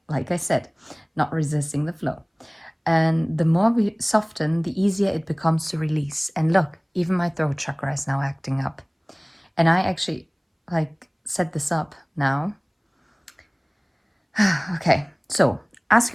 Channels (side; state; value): both; identical; correlation 1.00